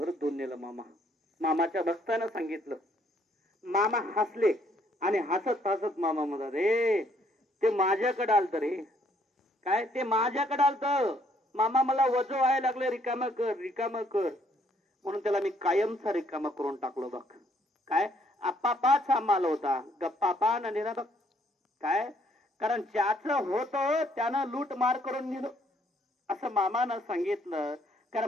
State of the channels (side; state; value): both; normal; correlation 0.67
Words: धुवून नेलं मामाच्या भक्तानं सांगितलं. मामा हसले आणि हसत हसत मामा म्हणतात, रे ते माझ्याकडे आलत रे. काय ते माझ्याकडे आलत मामा, मला वजो व्हायला लागले, रिकाम कर म्हणून त्याला मी कायमचा रिकामा करून टाकलो बघ. काय आपापाचा माल होता, गप्पापा न नेला बघ. काय कारण ज्याचं होतं त्यानं लूट मार करून नेलं असं मामानं सांगितलं.